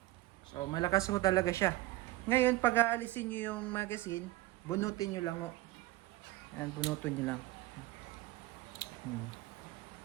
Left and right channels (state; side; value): quieter; left; 18.0 dB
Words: So, malakas ho talaga siya. Ngayon, pag aalisin nyo yung magazine, bunutin nyo lang ho. Ayan, bunutin nyo lang.